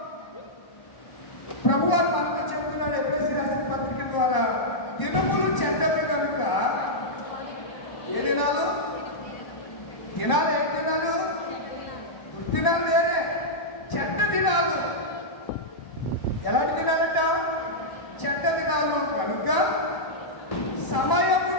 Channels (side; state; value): right; late; 1.0 ms